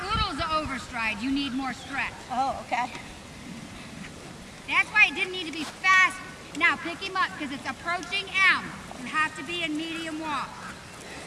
oodles of overstride. You need more stretch. Oh, okay. That's why it didn't need to be fast. Now pick him up because it's approaching M. You have to be in medium walk.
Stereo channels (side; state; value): both; identical; correlation 1.00